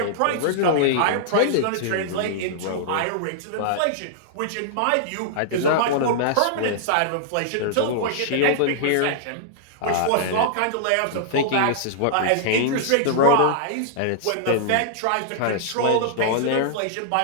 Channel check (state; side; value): different; both; correlation -0.01